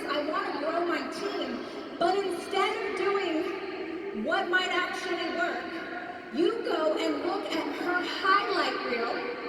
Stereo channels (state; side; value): identical; both; correlation 1.00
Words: I want to grow my team. But instead of doing what might actually work, you go and look at her highlight